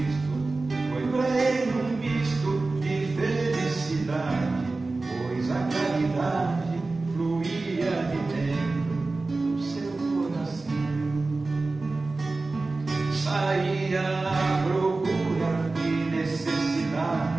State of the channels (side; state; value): left; quieter; 3.5 dB